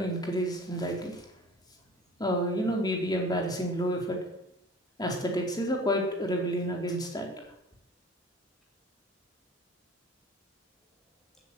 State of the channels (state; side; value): normal; both; correlation 0.43